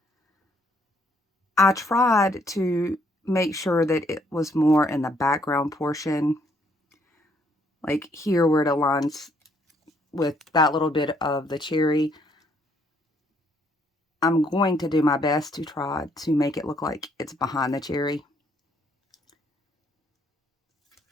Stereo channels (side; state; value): both; normal; correlation 0.68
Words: I tried to make sure that it was more in the background portion, like here where it aligns with that little bit of the cherry. I'm going to do my best to try to make it look like it's behind the cherry.